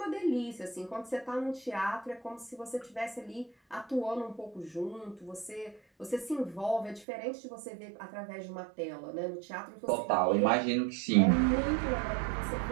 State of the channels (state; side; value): drops out; left; at 7.1 s